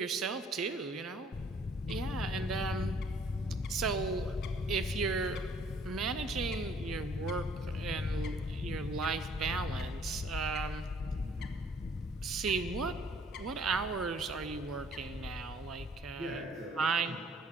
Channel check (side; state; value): both; normal; correlation 0.59